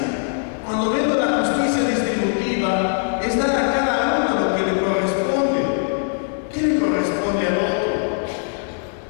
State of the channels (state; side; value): silent; right; 65 dB below the other